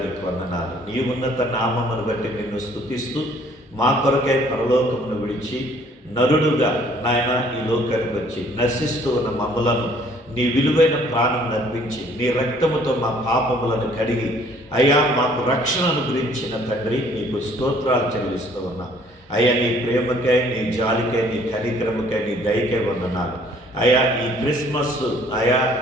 నీకు వందనాలు. నీ ఉన్నత నామమును బట్టి నిన్ను స్తుతిస్తూ మా కొరకై పరలోకమును విడిచి నరుడుగా నాయన ఈ లోకానికి వచ్చి నశిస్తూ ఉన్న మమ్ములను నీ విలువైన ప్రాణం నర్పించి నీ రక్తముతో మా పాపములను కడిగి అయ్యా మాకు రక్షణను గురించిన తండ్రి నీకు స్తోత్రాలు చెల్లిస్తూ ఉన్నా. అయ్యా నీ ప్రేమకై, నీ జాలికై, నీ కనికరముకై, నీ దయకై వందనాలు. అయ్యా ఈ క్రిస్మస్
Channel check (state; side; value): normal; both; correlation 0.59